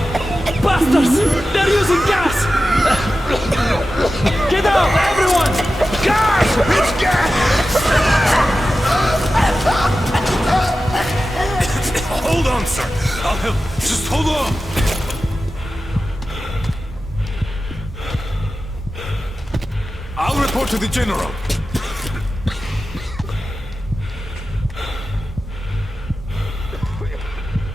Bastards! They're using gas! Get out, everyone! Gas! It's gas! Hold on, sir. I'll help. Just hold on. I'll report to the general. Come on, 1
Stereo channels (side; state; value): both; normal; correlation 0.93